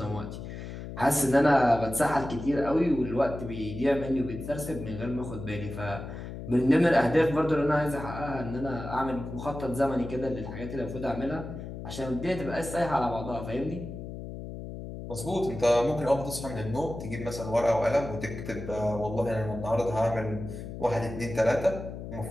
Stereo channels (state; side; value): noise; left; hum, 9 dB below the sound